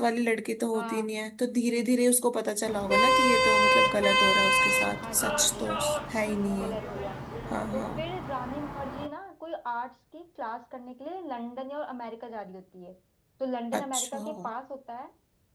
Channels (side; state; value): both; identical; correlation 1.00